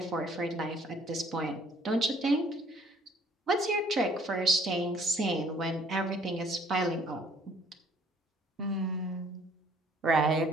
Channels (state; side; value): normal; both; correlation 0.59